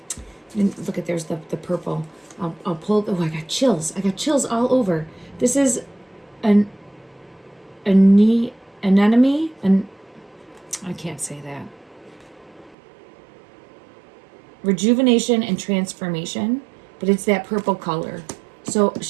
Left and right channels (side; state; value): left; drops out; at 12.8 s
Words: look at, there's the purple. I'll pull, oh, I got chills. I got chills all over. This is an anemone, and I can't say that. Rejuvenation and transformation, but it's that purple color. So